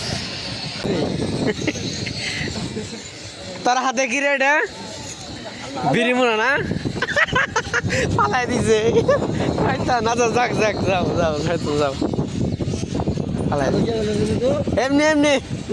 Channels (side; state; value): both; identical; correlation 1.00